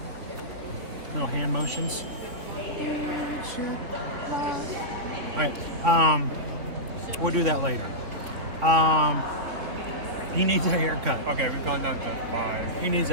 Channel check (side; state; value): left; late; 3.4 ms